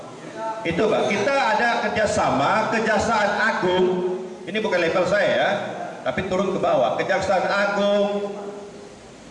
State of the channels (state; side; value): identical; both; correlation 1.00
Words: Itu, Pak, kita ada kerjasama Kejaksaan Agung. Ini bukan level saya ya, tapi turun ke bawah. Kejaksaan Agung,